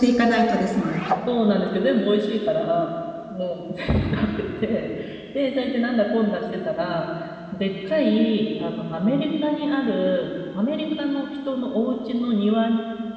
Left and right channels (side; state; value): both; identical; correlation 1.00